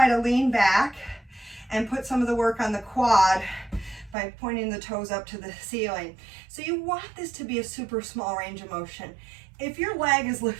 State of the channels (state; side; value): drops out; left; at 4.2 s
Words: to lean back and put some of the work on the quad by pointing the toes up to the ceiling. So you want this to be a super small range of motion. If your leg is